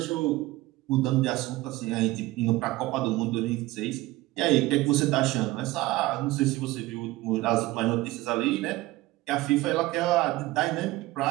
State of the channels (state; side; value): quieter; left; 18.6 dB